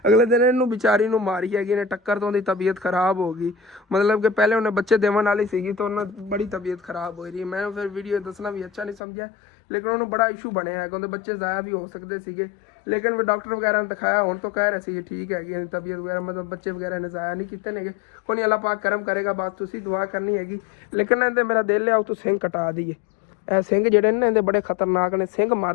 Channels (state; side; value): drops out; right; at 9.0 s